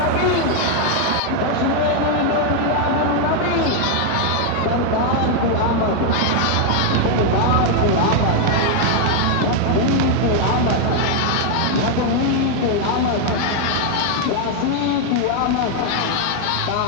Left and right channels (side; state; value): both; different; correlation 0.01